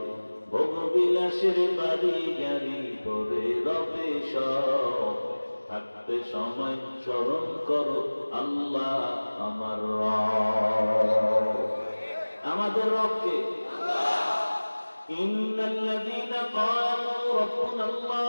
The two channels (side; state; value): both; inverted; correlation -1.00